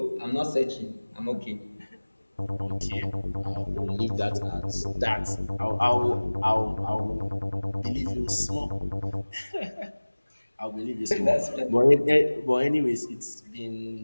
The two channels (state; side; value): inverted; both; correlation -1.00